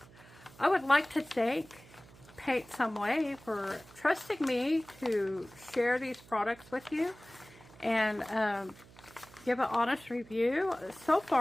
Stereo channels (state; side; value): noise; right; hum, 23 dB below the sound